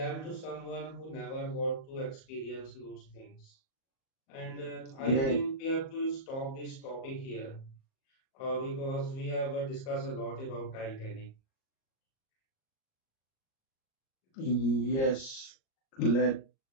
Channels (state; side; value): late; right; 38 ms